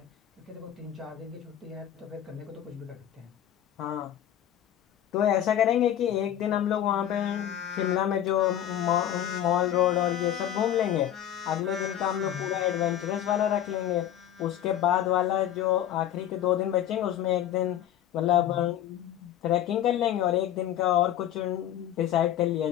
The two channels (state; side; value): quieter; right; 11.1 dB